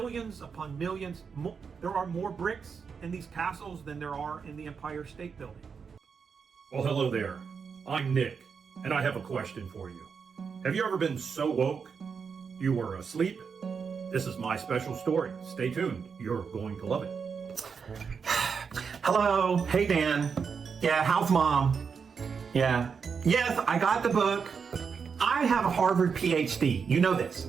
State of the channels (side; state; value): left; quieter; 6.0 dB